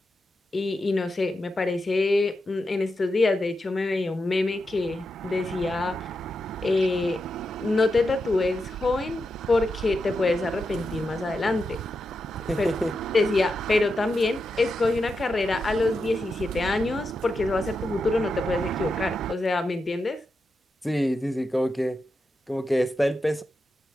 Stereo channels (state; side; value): normal; both; correlation 0.87